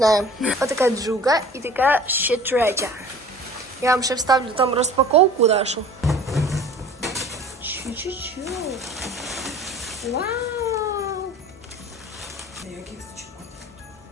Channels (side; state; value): both; normal; correlation 0.45